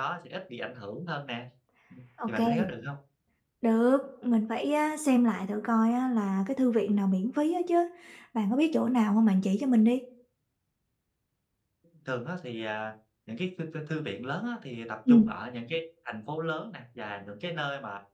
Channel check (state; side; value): identical; both; correlation 1.00